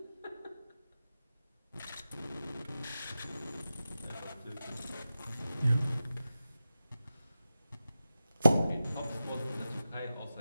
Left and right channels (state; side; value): inverted; both; correlation -0.92